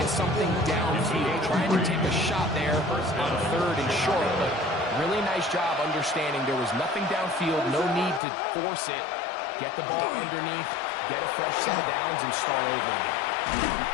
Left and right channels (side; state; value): right; drops out; at 8.2 s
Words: something downfield, trying to take a shot there on third and short, but really nice job understanding there was nothing downfield, no need to force it. Get the ball underneath, get a fresh set of downs, and start over again.